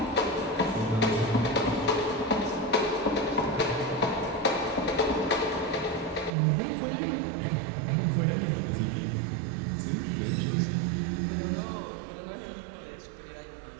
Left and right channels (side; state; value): left; drops out; at 6.4 s